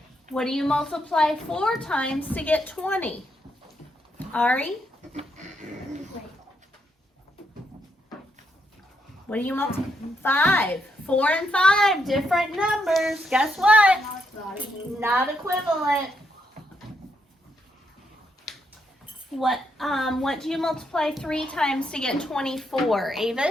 What do you multiply 4 times to get 20? Ari? What do you multiply? 5. 4 and 5, different numbers. Guess what? Not equivalent. What do you multiply 3 times to get 24?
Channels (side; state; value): both; normal; correlation 0.78